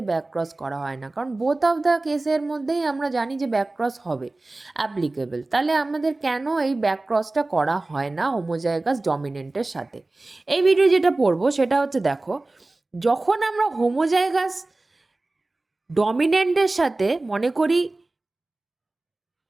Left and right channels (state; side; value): quieter; left; 3.0 dB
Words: ব্যাক ক্রস করা হয় না। কারণ বোথ অফ দ্য কেসের মধ্যেই আমরা জানি যে ব্যাক ক্রস হবে অ্যাপ্লিকেবল। তাহলে আমাদের কেন এই ব্যাক ক্রসটা করা হয় না হোমোজাইগাস ডমিনেন্টের সাথে। এই ভিডিও যেটা পড়বো সেটা হচ্ছে, দেখো, যখন আমরা হোমোজাইগাস ডমিনেন্টের সাথে মনে করি